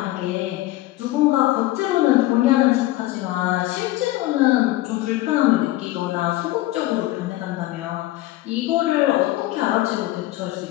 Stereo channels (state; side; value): quieter; right; 17.0 dB